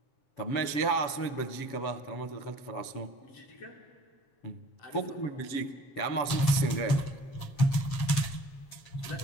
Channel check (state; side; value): late; right; 7.4 ms